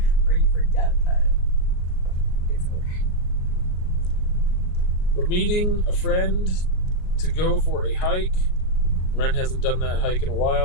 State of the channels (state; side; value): late; right; 38 ms